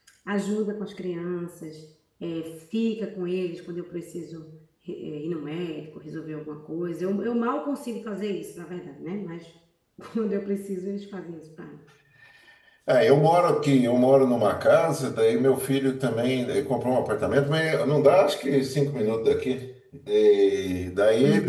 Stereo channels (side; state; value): both; identical; correlation 1.00